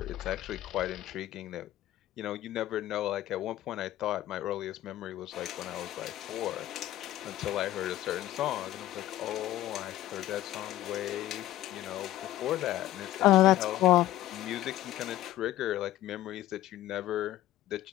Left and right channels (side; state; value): right; quieter; 14.4 dB